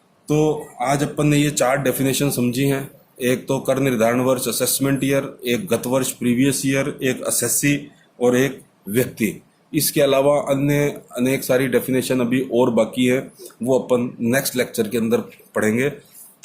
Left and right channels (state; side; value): identical; both; correlation 1.00